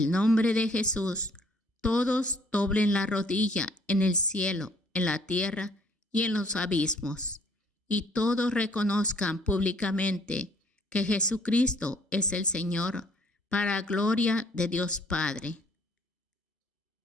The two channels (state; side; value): normal; both; correlation 0.61